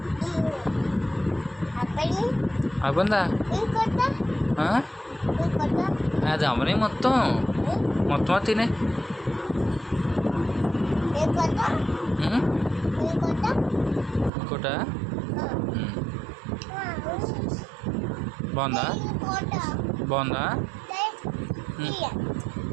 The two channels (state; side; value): drops out; left; at 14.3 s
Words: అయిపోయిందా? అది అమ్మనే మొత్తం మొత్తం తినే. ఇంకోట బాగుందా? బాగుందా?